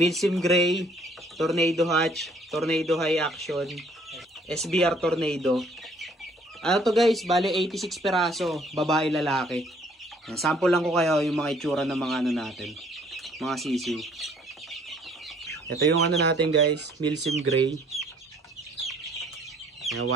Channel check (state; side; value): normal; both; correlation 0.60